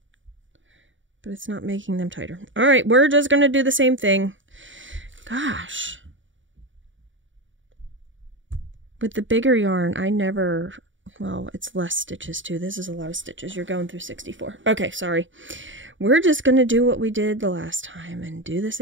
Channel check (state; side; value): late; left; 0.56 ms